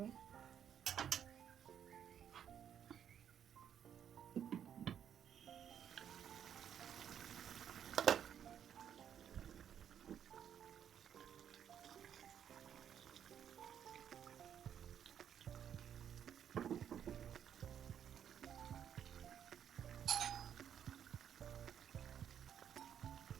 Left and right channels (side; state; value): left; quieter; 9.1 dB